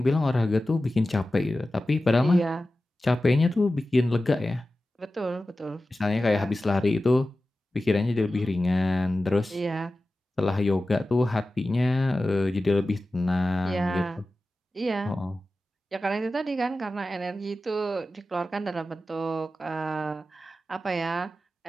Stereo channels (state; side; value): normal; both; correlation 0.94